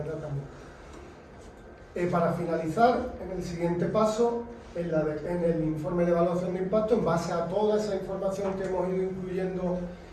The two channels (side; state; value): both; identical; correlation 1.00